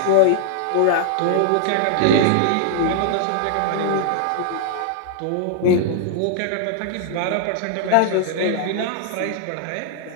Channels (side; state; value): both; different; correlation 0.00